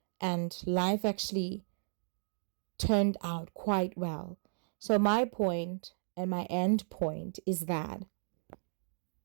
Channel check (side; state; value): left; silent; digital silence